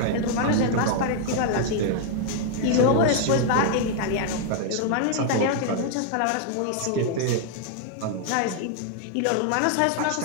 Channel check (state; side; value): different; both; correlation 0.00